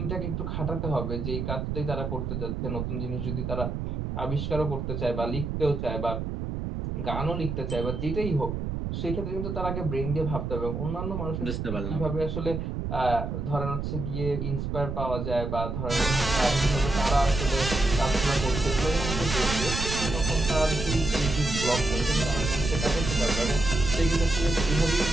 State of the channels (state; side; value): noise; right; rumble, 3 dB below the sound